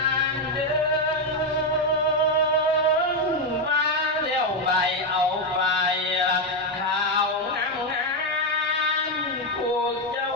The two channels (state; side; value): normal; both; correlation 0.05